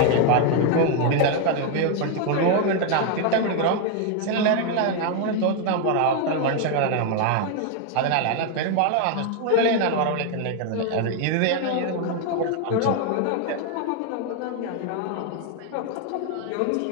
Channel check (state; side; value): different; both; correlation 0.01